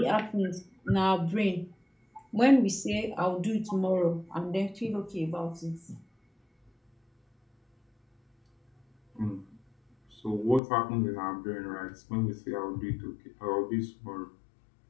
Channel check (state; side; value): drops out; right; at 10.6 s